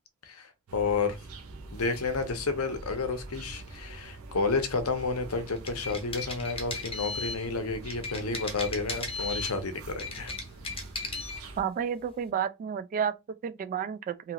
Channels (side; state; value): both; normal; correlation -0.14